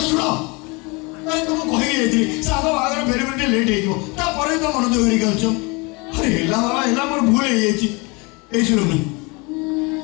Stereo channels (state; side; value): quieter; right; 28.1 dB